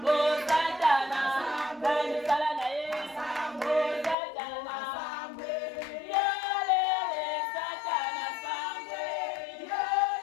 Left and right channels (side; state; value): right; drops out; at 4.2 s